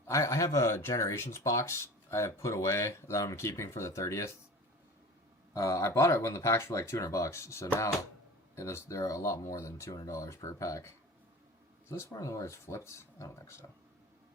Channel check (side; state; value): both; normal; correlation 0.37